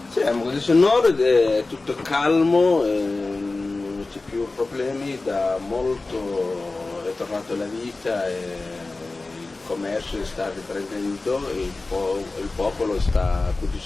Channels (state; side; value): quieter; right; 3.4 dB